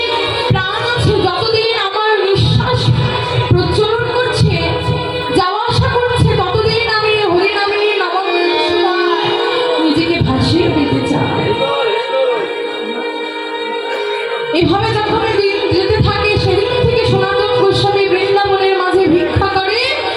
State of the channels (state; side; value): identical; both; correlation 1.00